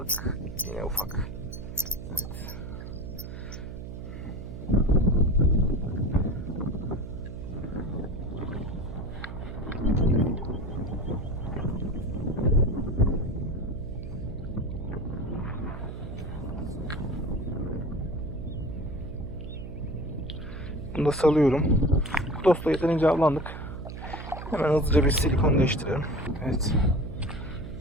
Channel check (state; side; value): noise; right; hum, 9 dB below the sound